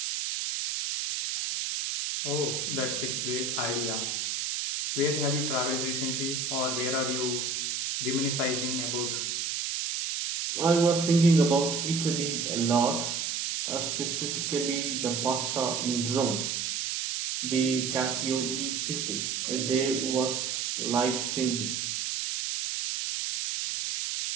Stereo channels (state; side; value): noise; right; hiss, 1 dB below the sound